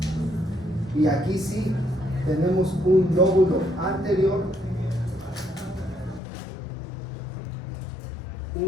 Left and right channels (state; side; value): drops out; right; at 6.2 s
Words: Y aquí sí tenemos un lóbulo anterior,